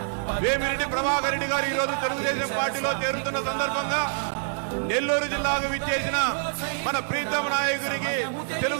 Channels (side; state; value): left; silent; 61 dB below the other